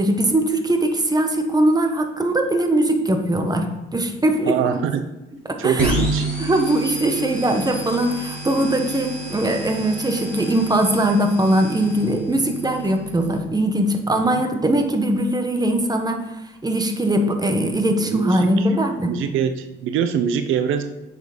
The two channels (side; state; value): both; normal; correlation 0.62